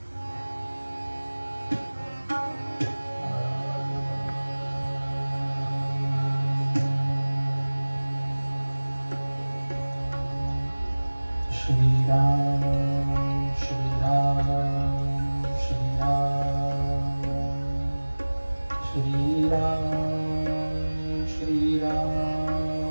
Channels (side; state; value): both; inverted; correlation -1.00